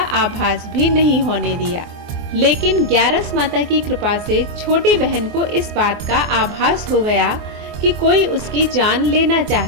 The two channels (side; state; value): left; late; 24 ms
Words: आभास भी नहीं होने दिया। लेकिन ग्यारस माता की कृपा से छोटी बहन को इस बात का आभास हो गया कि कोई उसकी जान लेना